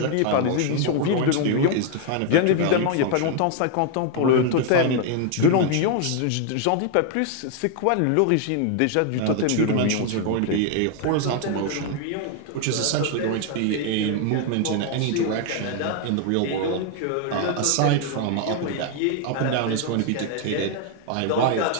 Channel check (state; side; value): different; both; correlation 0.00